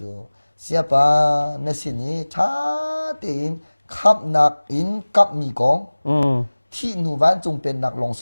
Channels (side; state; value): both; inverted; correlation -1.00